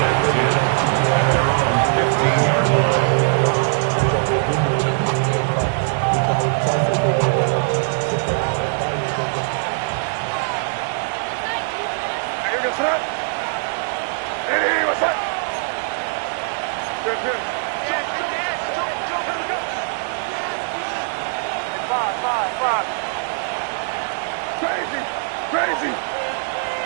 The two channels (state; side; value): silent; left; digital silence